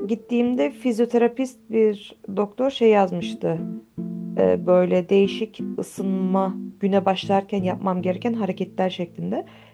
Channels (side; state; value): both; identical; correlation 1.00